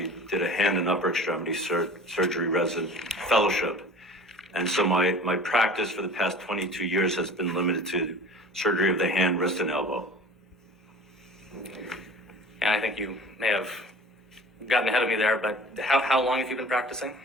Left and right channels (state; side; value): normal; both; correlation 0.42